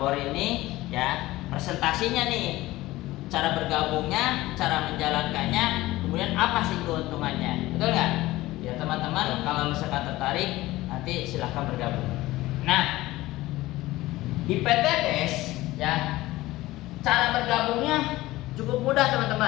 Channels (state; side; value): quieter; right; 17.8 dB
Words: ini ya presentasinya nih. Cara bergabungnya, cara menjalankannya, kemudian apa sih keuntungannya, betul nggak? Ya teman-teman, kalau misalkan tertarik, nanti silahkan bergabung. Nah, di PT BES ya, cara bergabungnya cukup mudah